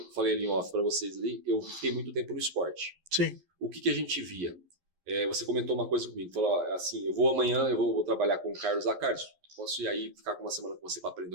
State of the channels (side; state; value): left; late; 11 ms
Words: falei ali em off para vocês ali, eu fiquei muito tempo no esporte. Sim. O que a gente via? Você comentou uma coisa comigo, falou assim, amanhã eu vou trabalhar com o Carlos. Carlos, posso ir aí ficar com uma semana com você para aprender